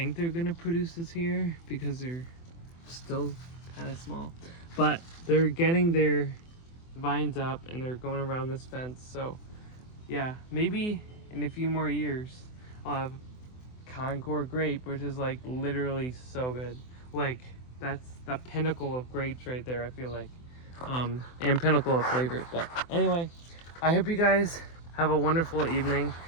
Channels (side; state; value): right; late; 24 ms